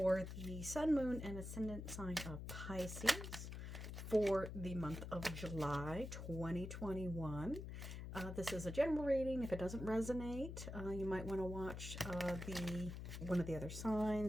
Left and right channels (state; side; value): noise; left; hum, 7 dB below the sound